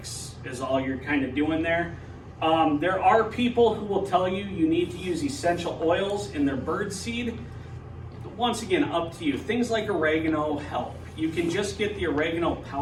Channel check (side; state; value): both; identical; correlation 1.00